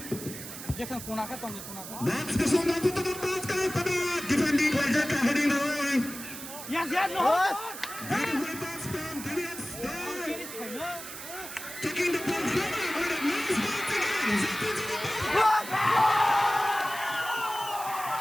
Jackson punah ka tong punah ka. That's the song of the ball pada defending Raja Kahani Roy. Yes, no. Beautiful pass from DBS. Taking the ball forward with a nice ball again.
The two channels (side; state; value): right; noise; hiss, 11 dB below the sound